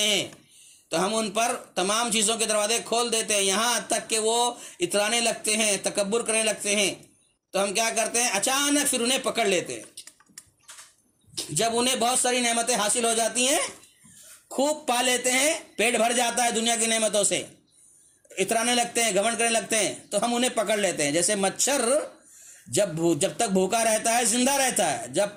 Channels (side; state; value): both; identical; correlation 1.00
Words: ہیں تو ہم ان پر تمام چیزوں کے دروازے کھول دیتے ہیں، یہاں تک کہ وہ اترانے لگتے ہیں، تکبر کرنے لگتے ہیں. تو ہم کیا کرتے ہیں؟ اچانک پھر انہیں پکڑ لیتے ہیں. جب انہیں بہت ساری نعمتیں حاصل ہو جاتی ہیں، خوب پا لیتے ہیں، پیٹ بھر جاتا ہے دنیا کی نعمتوں سے، اترانے لگتے ہیں، گھمنڈ کرنے لگتے ہیں، تو ہم انہیں پکڑ لیتے ہیں. جیسے مچھر جب تک بھوکا رہتا ہے زندہ رہتا ہے، جب